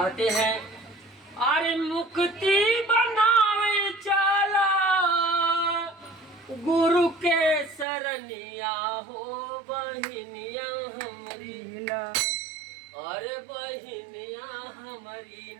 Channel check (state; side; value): drops out; left; at 7.9 s